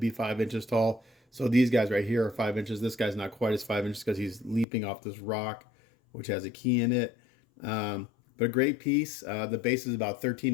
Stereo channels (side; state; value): right; drops out; at 4.7 s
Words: 5 inches tall. So these guys right here are 5 inches. This guy's not quite as 5 inches because he's leaping off this rock, which has a key in it. But a great piece. The base is about